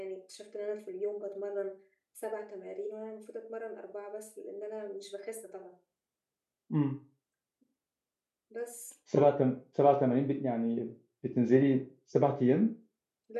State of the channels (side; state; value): both; identical; correlation 1.00